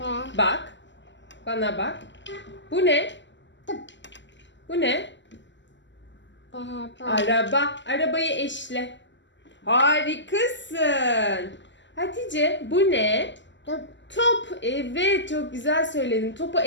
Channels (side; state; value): right; late; 0.53 ms